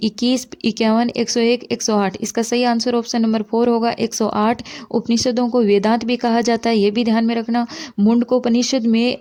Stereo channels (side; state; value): both; identical; correlation 1.00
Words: 21, 51, 101, 108? इसका सही आंसर ऑप्शन नंबर 4 होगा, 108। उपनिषदों को वेदांत भी कहा जाता है, ये भी ध्यान में रखना। मुंडकोपनिषद में